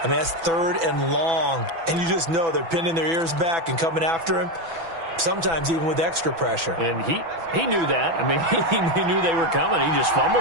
I mean, that's 3rd and long. And you just know they're pinning their ears back and coming after him. Sometimes even with extra pressure. And he knew that. I mean, he knew they were coming. He just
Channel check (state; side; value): late; left; 6.0 ms